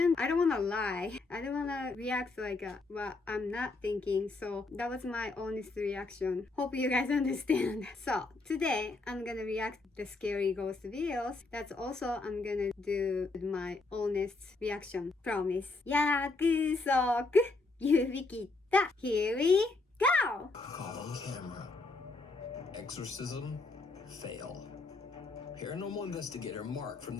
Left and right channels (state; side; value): quieter; right; 3.5 dB